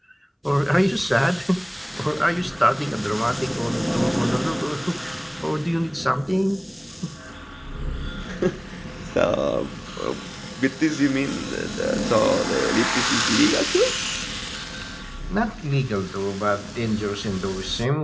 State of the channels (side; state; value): both; identical; correlation 1.00